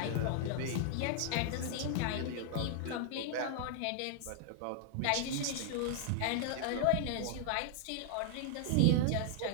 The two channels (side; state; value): both; different; correlation 0.00